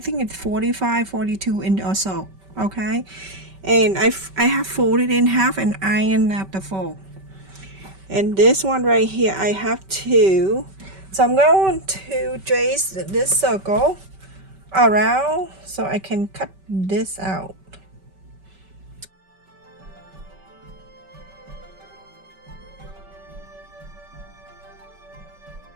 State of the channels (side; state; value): left; late; 5.2 ms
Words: it's 45, 42 inch or so. Okay, and I have folded in half and ironed at the fold. And this one right here I have two. So I'm going to trace this circle around so I can cut this out.